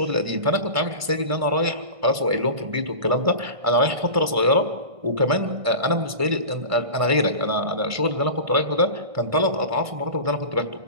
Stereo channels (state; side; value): late; left; 1.5 ms